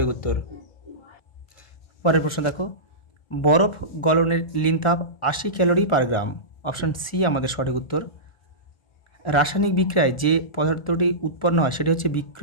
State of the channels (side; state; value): right; late; 1.4 ms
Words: উত্তর। পরের প্রশ্ন দেখো, বরফ গলনের লিন তাপ 80 ক্যালোরি পার গ্রাম। অপশান সি আমাদের সঠিক উত্তর। রাসায়নিক বিক্রিয়ায় যে পদার্থটি উৎপন্ন হয় সেটি হচ্ছে